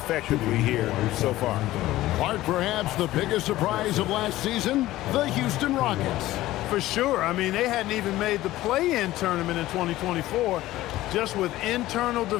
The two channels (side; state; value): right; quieter; 16.1 dB